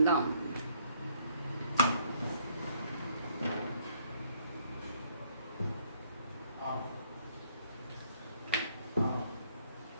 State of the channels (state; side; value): inverted; both; correlation -0.66